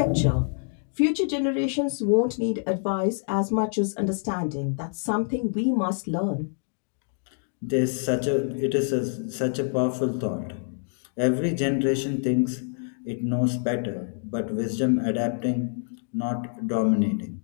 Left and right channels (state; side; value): silent; right; digital silence